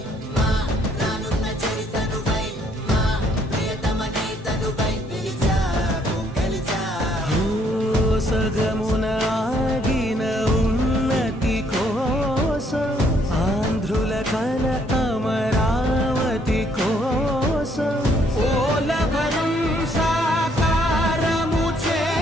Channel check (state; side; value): normal; both; correlation 0.67